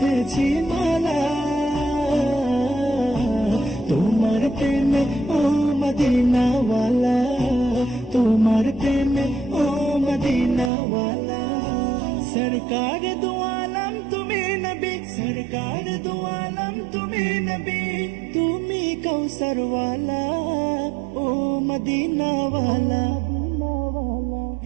মালা তোমার প্রেমে ও মদিনাওয়ালা তোমার প্রেমে ও মদিনাওয়ালা सरकार दो आलम तुम्हें नबी सरकार दो आलम तुम्हें नबी तुम्ही कौसर वाला ओ मदीना वाला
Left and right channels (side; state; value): left; drops out; at 10.7 s